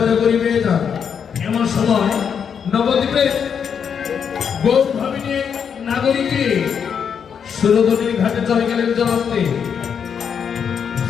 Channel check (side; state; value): right; quieter; 7.3 dB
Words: করিবে না। এমন সময় নবদ্বীপে গৌর ভাবিনী নাগরিকে সুরধনীর ঘাটে চলে গেলেন জলান্তে।